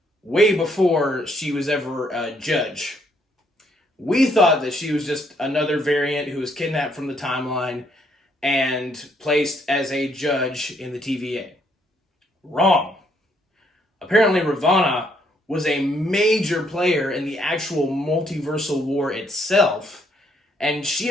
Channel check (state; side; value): normal; both; correlation 0.70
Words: way before she was ever a judge. We thought that she was just another variant who was kidnapped from the timeline and placed as a judge in the TVA. Wrong. Apparently Ravonna was a major player in the actual multiversal war itself, and she